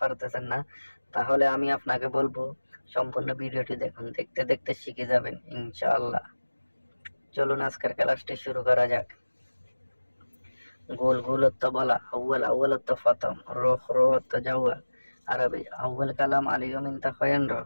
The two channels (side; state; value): both; inverted; correlation -1.00